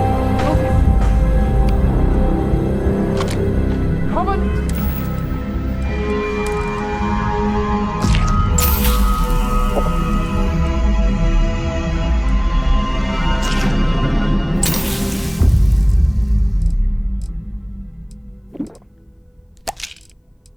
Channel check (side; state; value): both; identical; correlation 1.00